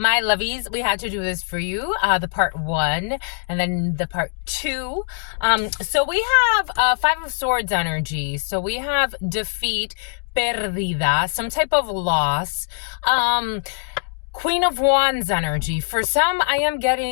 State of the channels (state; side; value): silent; right; digital silence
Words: lovies, we had to do this for you. The part one and then the part two. So we have Five of Swords energy. So we have defeat, perdida, some type of loss. Queen of Wands energy. For some, I am